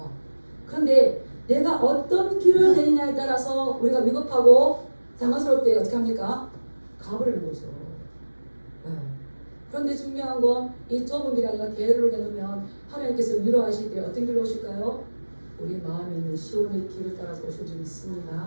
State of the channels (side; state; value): both; inverted; correlation -1.00